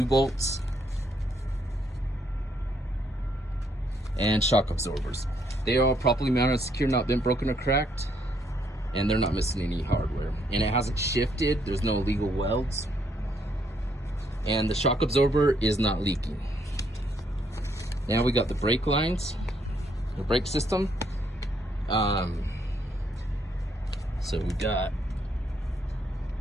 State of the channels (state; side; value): normal; both; correlation 0.72